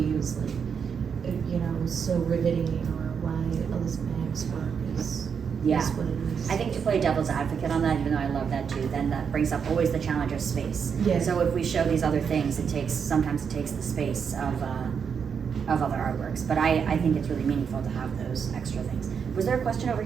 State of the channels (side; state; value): left; quieter; 6.7 dB